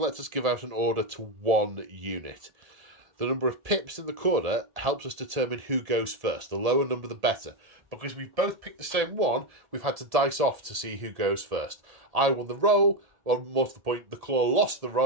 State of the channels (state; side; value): late; left; 1.7 ms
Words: us give out an order to 1 unit. The number of pips in the corner helps us determine who goes first. The lower number, the better. Because we've both picked the same one, we've had to dice off to see who goes first. I won the roll. Well, more to the point, the Claw lost the